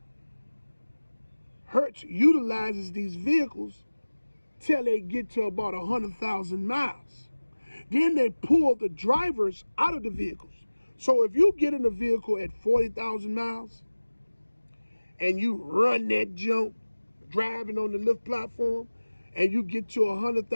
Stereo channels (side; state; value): both; inverted; correlation -1.00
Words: Hertz utilizes these vehicles till they get to about 100,000 miles. Then they pull the drivers out of the vehicles. So if you get in a vehicle at 40,000 miles and you run that jump driving on the Lyft platform and you get to